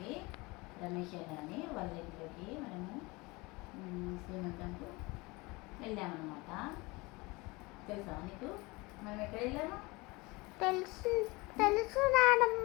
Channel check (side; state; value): right; quieter; 24.3 dB